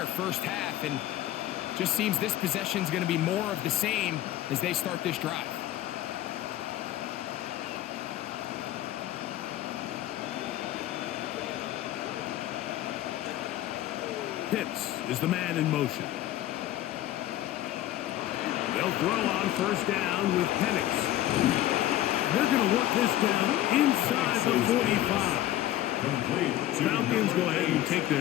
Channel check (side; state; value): right; quieter; 13.7 dB